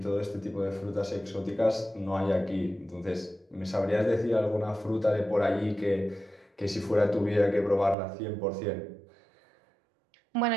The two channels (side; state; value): left; drops out; at 8.0 s